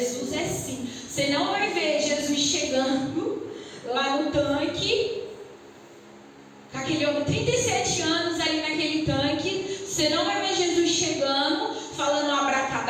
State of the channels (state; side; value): identical; both; correlation 1.00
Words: é simples. Você não vai ver Jesus chegando lá no tanque, com aquele homem, 37 anos ali naquele tanque. Você não vai ver Jesus chegando, falando